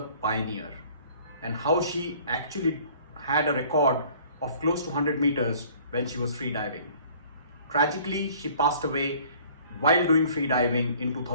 pioneer, and how she actually had a record of close to 100 meters when she was freediving. Tragically, she passed away while doing freediving in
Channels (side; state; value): both; inverted; correlation -0.53